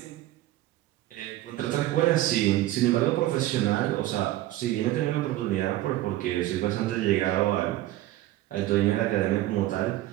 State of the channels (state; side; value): quieter; left; 15.3 dB